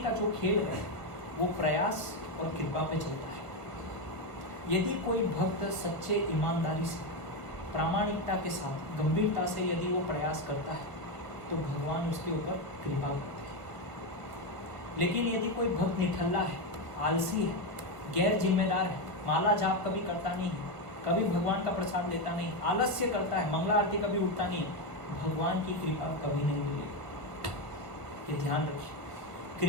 जो खेल है वो प्रयास और कृपा पे चलता है। यदि कोई भक्त सच्चे ईमानदारी से, प्रामाणिकता के साथ, गंभीरता से यदि वो प्रयास करता है तो भगवान उसके ऊपर कृपा करते हैं। लेकिन यदि कोई भक्त निठल्ला है, आलसी है, गैर जिम्मेदार है, माला जाप कभी करता नहीं है, कभी भगवान का प्रसाद लेता नहीं, आलस्य करता है, मंगला आरती कभी उठता नहीं है, भगवान की कृपा कभी नहीं मिलेगी। ये ध्यान रखिए।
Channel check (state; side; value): late; left; 1.5 ms